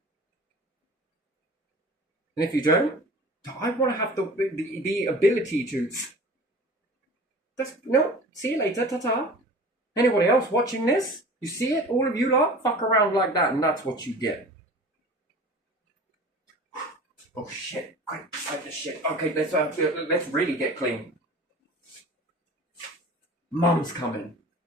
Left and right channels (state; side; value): normal; both; correlation 0.40